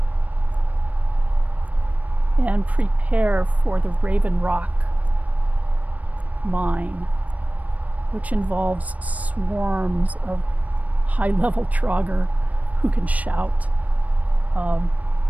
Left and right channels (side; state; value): left; late; 0.071 ms